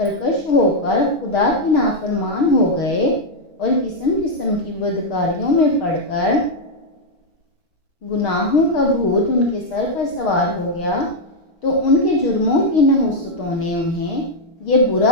ہو کر خدا کے نافرمان ہو گئے اور قسم قسم کی بدکاریوں میں پڑ کر گناہوں کا بھوت ان کے سر پر سوار ہو گیا، تو ان کے جرموں کی نحوستوں نے انہیں یہ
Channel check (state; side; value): late; right; 6.3 ms